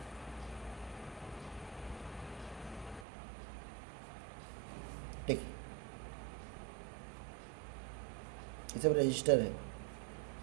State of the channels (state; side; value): drops out; left; at 3.1 s